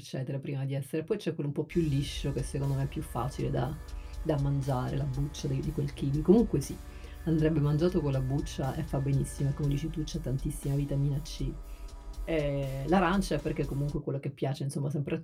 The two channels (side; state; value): both; identical; correlation 1.00